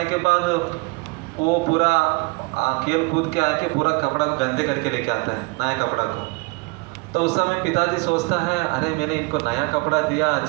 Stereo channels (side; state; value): left; quieter; 27.4 dB